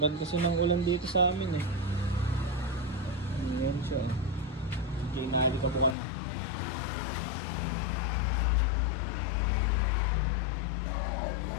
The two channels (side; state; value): right; drops out; at 6.0 s